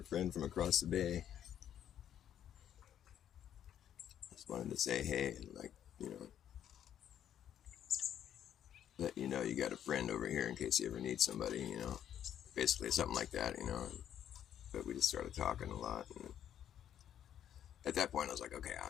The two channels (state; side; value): quieter; right; 10.1 dB